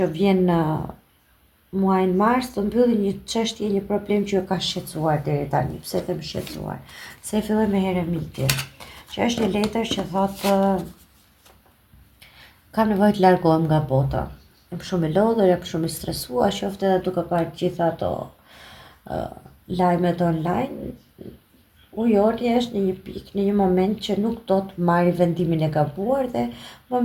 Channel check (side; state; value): both; identical; correlation 1.00